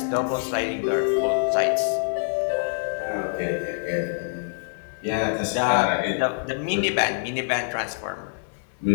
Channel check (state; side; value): silent; right; digital silence